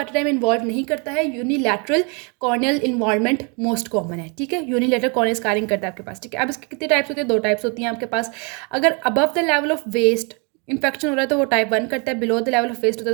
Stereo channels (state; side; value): quieter; left; 34.1 dB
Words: टाइम इन्वॉल्व नहीं करता है। Unilateral corneal involvement most common है, ठीक है। यूनिलैटरल कॉर्नियल स्कारिंग करता है आपके पास, ठीक है। अब इसके कितने टाइप्स होते हैं? 2 टाइप्स होती हैं आपके पास। अगर above the level of waist infection हो रहा है तो वो टाइप 1 करता है, below the level of waist होता